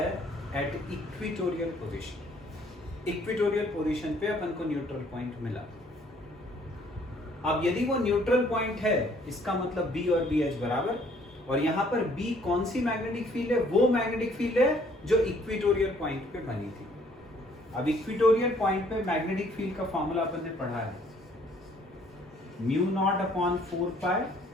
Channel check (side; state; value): both; normal; correlation 0.62